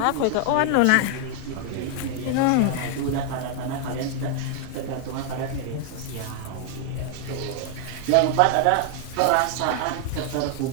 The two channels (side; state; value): both; different; correlation 0.00